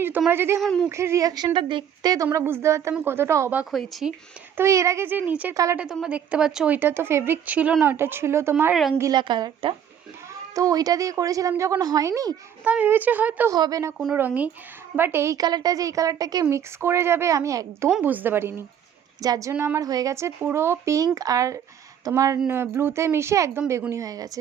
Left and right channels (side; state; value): left; quieter; 9.0 dB